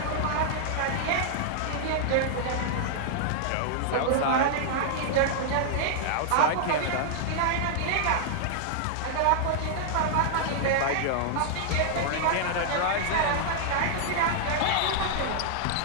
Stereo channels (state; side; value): different; both; correlation -0.01